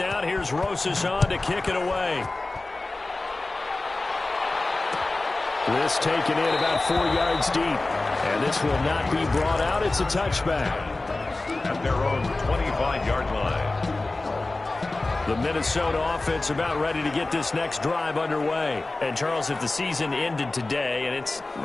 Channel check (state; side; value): quieter; right; 3.1 dB